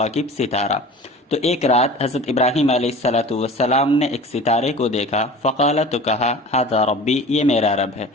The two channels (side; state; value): both; normal; correlation 0.40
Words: ستارہ۔ تو ایک رات حضرت ابراہیم علیہ السلام نے ایک ستارے کو دیکھا، فقال تو کہا ھذا ربی، یہ میرا رب ہے۔